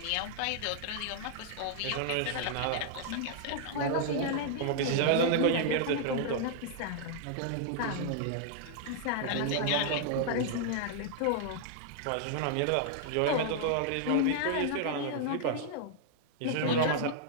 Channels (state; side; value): different; both; correlation -0.01